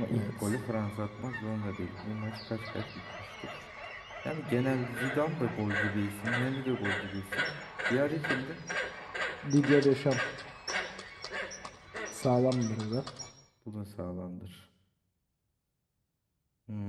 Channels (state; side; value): identical; both; correlation 1.00